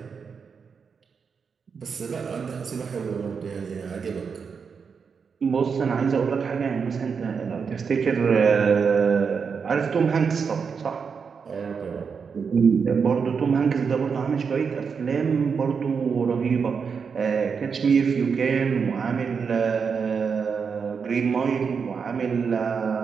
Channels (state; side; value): quieter; left; 5.9 dB